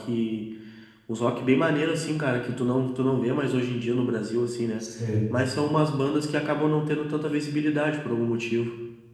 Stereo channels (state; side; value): identical; both; correlation 1.00